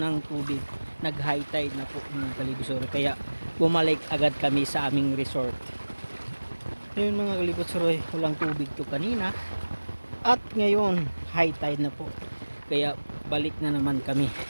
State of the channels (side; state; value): both; inverted; correlation -1.00